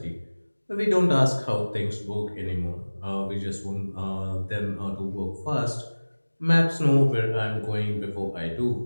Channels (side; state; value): both; inverted; correlation -1.00